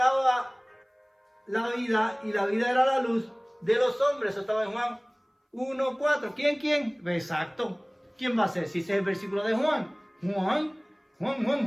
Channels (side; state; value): both; identical; correlation 1.00